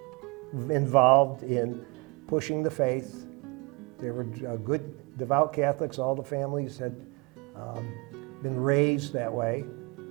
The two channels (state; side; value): quieter; left; 27.8 dB